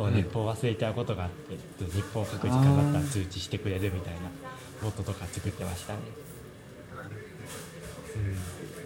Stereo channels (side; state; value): both; identical; correlation 1.00